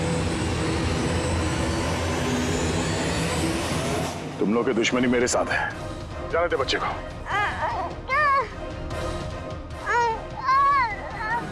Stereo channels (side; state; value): both; identical; correlation 1.00